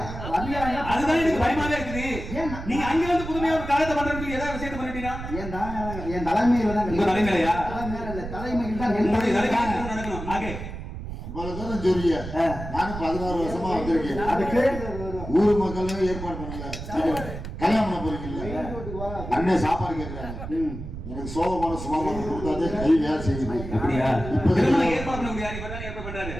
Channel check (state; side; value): noise; right; rumble, 8 dB below the sound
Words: அதுதான் எனக்கு பயமாவே இருக்குது. நீங்க அங்க வந்து புதுமையா ஒரு காலத்தை பண்றதுக்கு ஏதாவது விஷயத்தை பண்ணிட்டீங்க. என் தலைமையில தான். உங்க தலைமையிலயா? தலைமையில் தான் நடக்கணும். ஆகே இவ்வளவு தூரம் சொல்லிய நானும் 16 வருஷமா வந்திருக்கேன். அதுக்கு ஊர் மக்களும் ஏற்பாடு பண்ணல. கல்யாணம் பண்ண போறீங்கல்ல, அண்ணன் சாப்பாடு கேட்கிறாங்க. எனக்கு சோகமான சுமாமான கொடுத்தாதே கை வேலை செய்யுது. அப்படியா? இப்ப ஏற்பாடு பண்ண முடியாது. இப்பதான் ஏற்பாடு பண்றாரு.